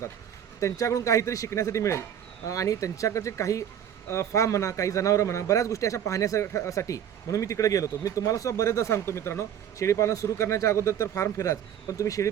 त्यांच्याकडून काहीतरी शिकण्यासाठी मिळेल आणि त्यांच्याकडचे काही फार्म म्हणा, काही जनावरं म्हणा, बऱ्याच गोष्टी अशा पाहण्यासाठी म्हणून मी तिकडे गेलो होतो. मी तुम्हाला सुद्धा बरेचदा सांगतो मित्रांनो, शेळीपालन सुरू करण्याच्या अगोदर तर फार्म फिराच, पण तुम्ही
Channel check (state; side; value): quieter; left; 9.5 dB